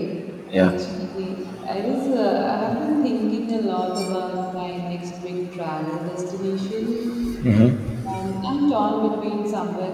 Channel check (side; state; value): both; identical; correlation 1.00